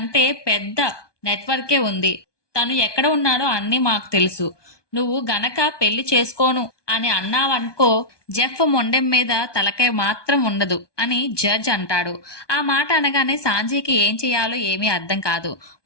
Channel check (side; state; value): right; late; 1.2 ms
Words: పెద్ద నెట్వర్కే ఉంది. తను ఎక్కడ ఉన్నాడో అన్నీ మాకు తెలుసు. నువ్వు గనక పెళ్లి చేసుకోను అని అన్నావనుకో, జెఫ్ మొండెం మీద తలకాయ మాత్రం ఉండదు అని జడ్జ్ అంటాడు. ఆ మాట అనగానే సాంజీకి ఏం చేయాలో ఏమీ అర్థం కాదు.